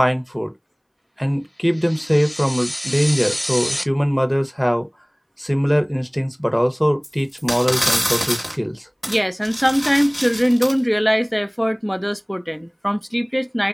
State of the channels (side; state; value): both; identical; correlation 1.00